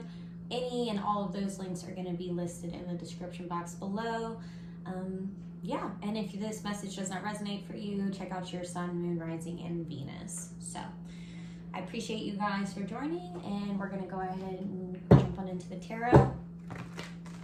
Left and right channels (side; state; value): both; identical; correlation 1.00